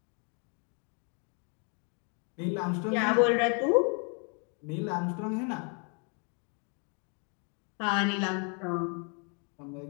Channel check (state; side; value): quieter; right; 38.1 dB